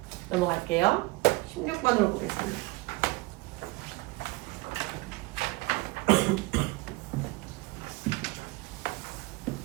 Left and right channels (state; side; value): quieter; left; 23.3 dB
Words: 넘어갈게요. 16번으로 보겠습니다.